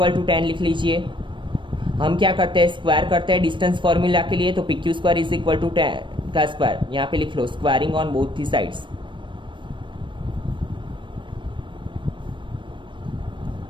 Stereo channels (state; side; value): late; left; 0.24 ms